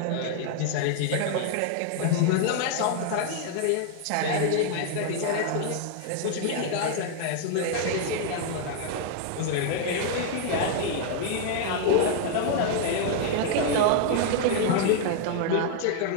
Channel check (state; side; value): different; both; correlation 0.00